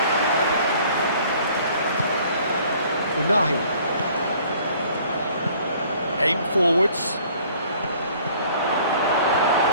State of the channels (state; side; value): inverted; both; correlation -0.55